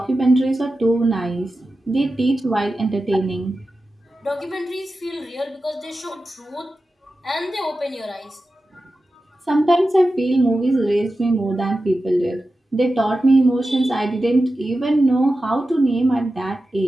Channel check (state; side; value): normal; both; correlation 0.93